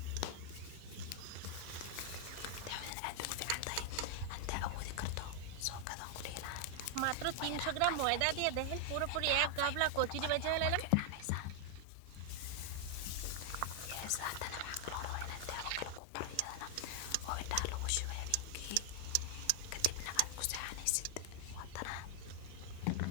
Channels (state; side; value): different; both; correlation 0.00